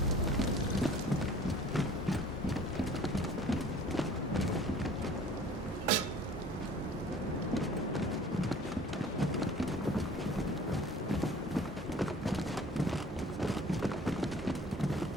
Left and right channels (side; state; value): both; normal; correlation 0.49